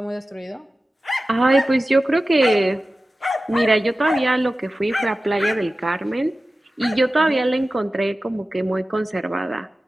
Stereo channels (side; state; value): both; normal; correlation 0.95